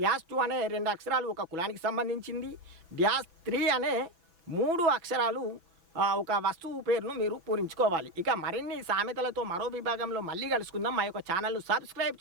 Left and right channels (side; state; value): left; late; 6.0 ms